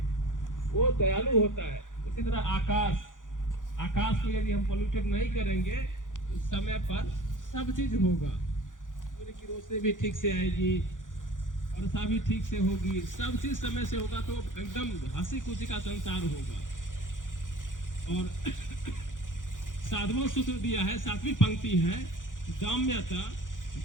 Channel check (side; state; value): right; late; 0.88 ms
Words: वो दयालु होता है। उसी तरह आकाश को यदि हम पोल्यूटेड नहीं करेंगे तो समय पर सब चीज होगा। सूर्य की रोशनी भी ठीक से आएगी, वर्षा भी ठीक से होगी, सब चीज समय से होगा, तो एकदम हंसी खुशी का संसार होगा। और साधवां सूत्र दिया है, 7वीं पंक्ति है, दाम्यता